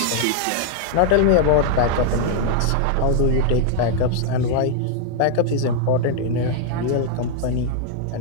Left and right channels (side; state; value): both; different; correlation 0.00